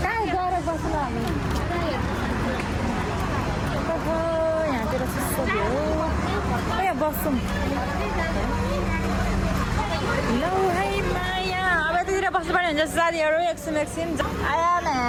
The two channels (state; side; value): identical; both; correlation 1.00